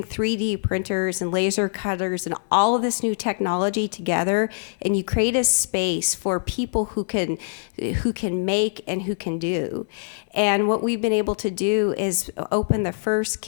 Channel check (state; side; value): silent; right; digital silence